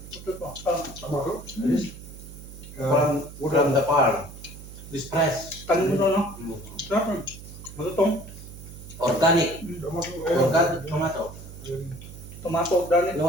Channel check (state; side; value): noise; right; hum, 15 dB below the sound